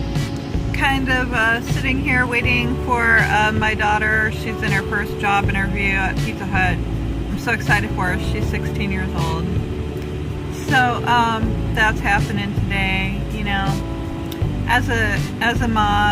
kind of sitting here waiting for my daughter. She's in her first job interview at Pizza Hut. I'm so excited for her. She's 16 years old. So that's happening today. You know, as a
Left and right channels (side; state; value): both; identical; correlation 1.00